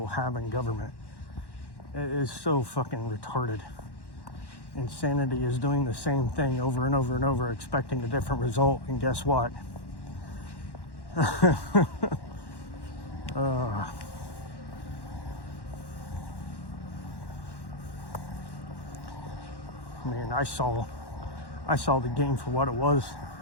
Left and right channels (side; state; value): right; late; 1.1 ms